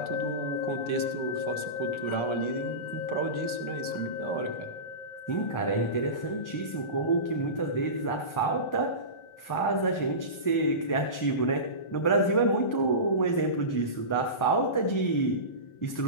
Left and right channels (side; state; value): right; late; 1.4 ms